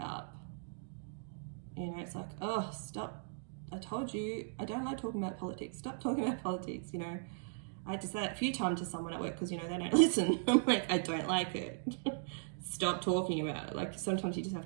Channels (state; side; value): silent; left; digital silence